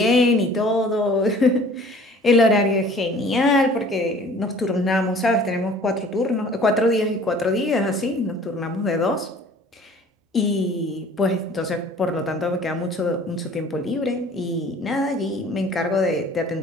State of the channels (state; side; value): normal; both; correlation 0.50